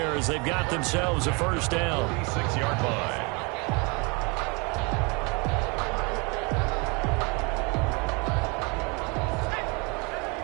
as they've got themselves a first down. 36-yard line.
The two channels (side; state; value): left; quieter; 30.8 dB